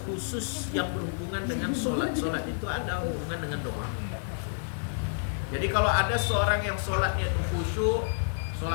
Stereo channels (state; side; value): silent; right; 58 dB below the other